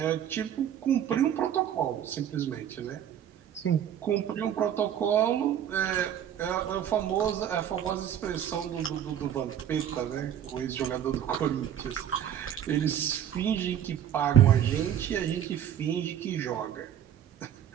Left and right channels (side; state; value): left; quieter; 10.0 dB